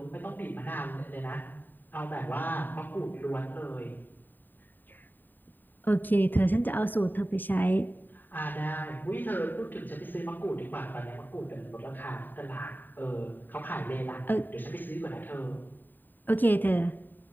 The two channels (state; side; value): late; right; 0.090 ms